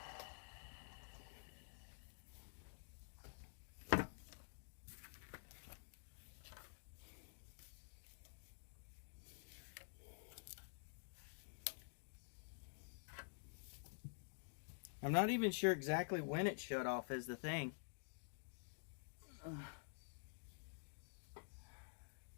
I'm not even sure exactly when it shut off is the thing.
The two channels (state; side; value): silent; right; digital silence